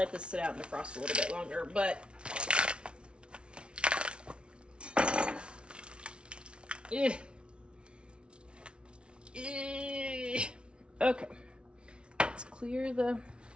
this sit out and defrost a little bit longer, but okay. Let's clear the...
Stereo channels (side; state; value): left; late; 0.058 ms